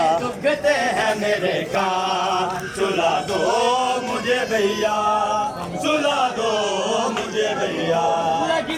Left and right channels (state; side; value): identical; both; correlation 1.00